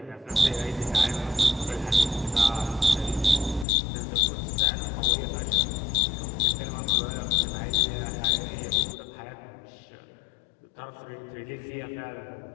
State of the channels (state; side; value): drops out; right; at 3.7 s